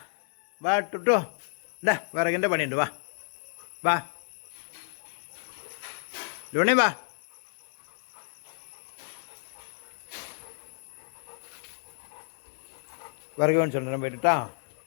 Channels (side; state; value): right; silent; 57 dB below the other